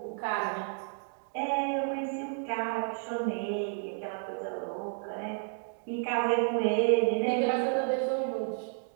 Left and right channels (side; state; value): left; silent; 56 dB below the other